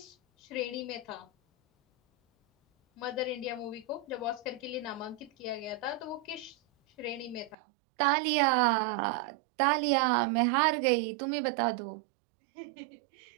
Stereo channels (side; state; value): left; drops out; at 7.6 s